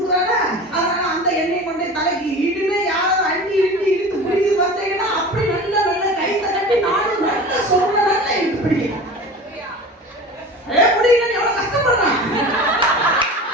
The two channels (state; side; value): normal; both; correlation 0.36